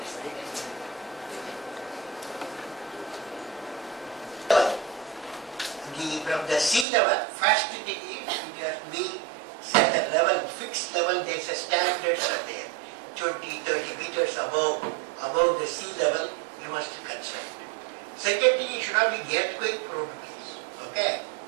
From the sea level, first thing is it has to be set a level, fixed level, there's a standards are there. 20, 30 meters above the sea level, you must construct. Second thing, it should not be earthquake prone place. Okay?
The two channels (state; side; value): drops out; left; at 6.9 s